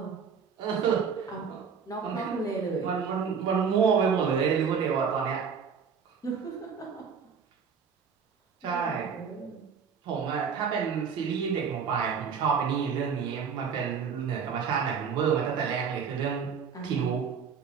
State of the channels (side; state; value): left; quieter; 6.4 dB